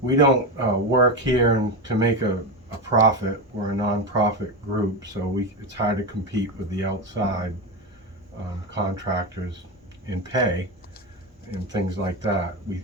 work here to make a profit. We're a non-profit group, so it's hard to compete with the outside contractors in pay and things like that.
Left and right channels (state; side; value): normal; both; correlation 0.16